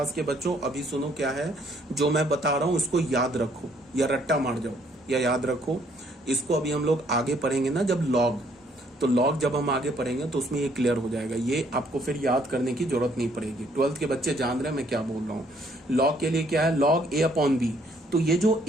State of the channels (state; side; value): normal; both; correlation 0.65